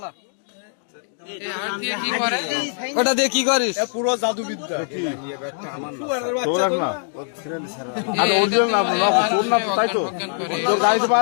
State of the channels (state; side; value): silent; right; digital silence